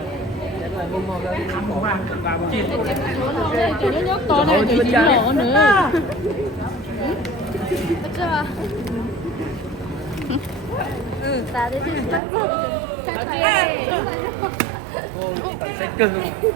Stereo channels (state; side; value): drops out; left; at 12.2 s